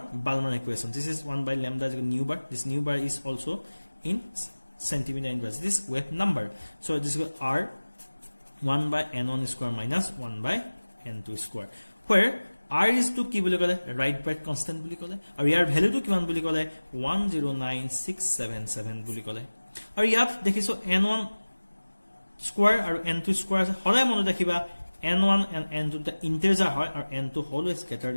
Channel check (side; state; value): both; inverted; correlation -1.00